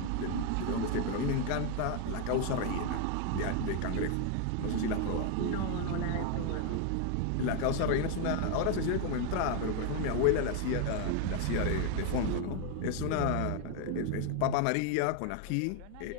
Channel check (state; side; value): different; both; correlation 0.01